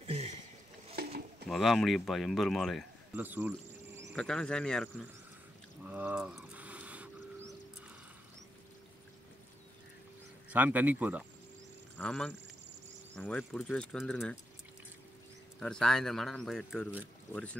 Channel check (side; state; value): both; normal; correlation 0.84